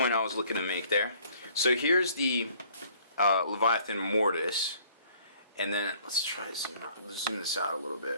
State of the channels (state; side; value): inverted; both; correlation -0.57